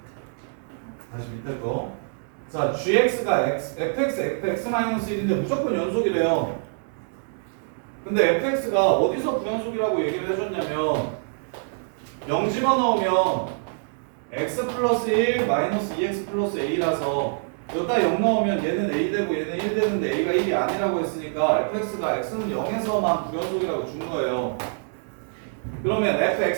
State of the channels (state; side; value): silent; left; digital silence